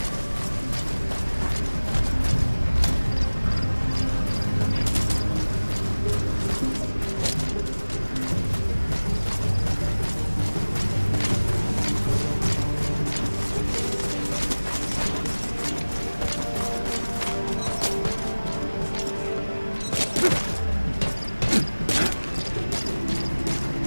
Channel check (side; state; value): both; inverted; correlation -1.00